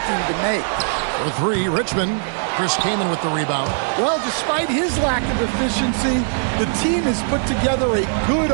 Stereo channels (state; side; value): silent; left; digital silence